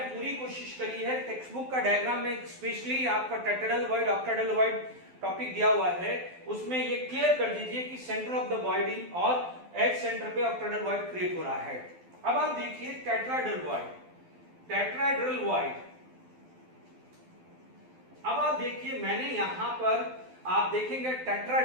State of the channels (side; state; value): left; late; 12 ms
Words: पूरी कोशिश करी है। टेक्स्ट बुक का डायग्राम में स्पेशली आपका tetrahedral void, octahedral void topic दिया हुआ है, उसमें ये क्लियर कर दीजिए कि सेंटर ऑफ द बॉडी और एज सेंटर पे ऑक्टाहेड्रल वॉइड क्रिएट हो रहा है। अब आप देखिए टेट्राहेड्रल वॉइड। अब आप देखिए मैंने यहां पर आप देखेंगे